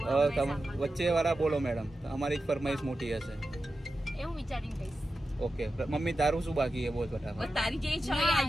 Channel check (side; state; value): both; normal; correlation 0.92